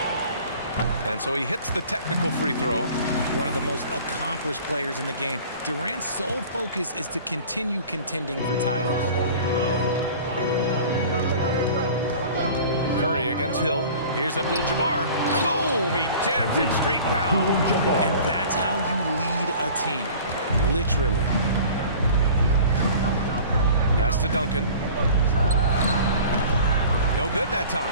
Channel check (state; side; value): inverted; both; correlation -0.44